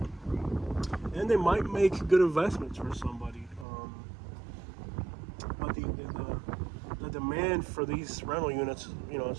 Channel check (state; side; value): drops out; left; at 3.7 s